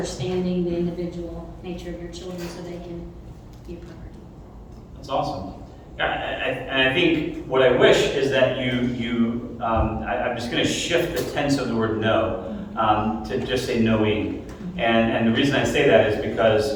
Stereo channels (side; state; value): both; identical; correlation 1.00